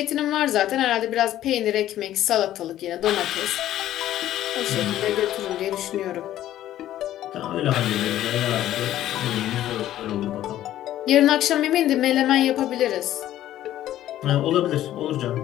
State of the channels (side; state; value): right; quieter; 12.9 dB